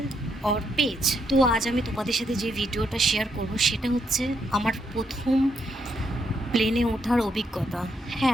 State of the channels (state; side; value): normal; both; correlation 0.78